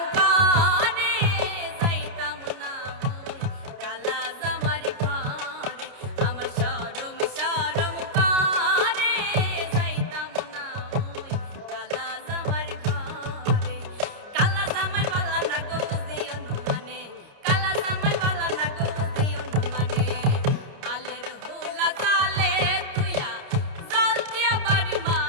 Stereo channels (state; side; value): late; left; 30 ms